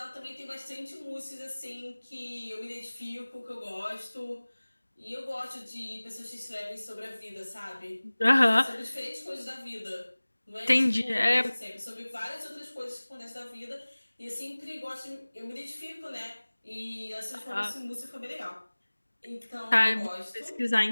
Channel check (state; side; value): inverted; both; correlation -1.00